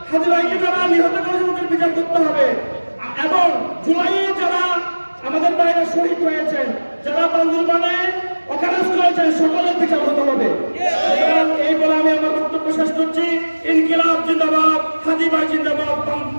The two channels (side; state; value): both; inverted; correlation -1.00